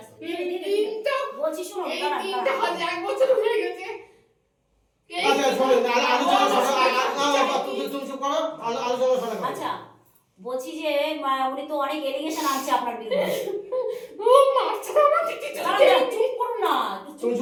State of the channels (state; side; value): identical; both; correlation 1.00